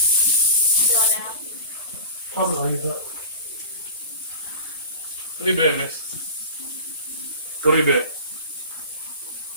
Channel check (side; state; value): both; inverted; correlation -0.35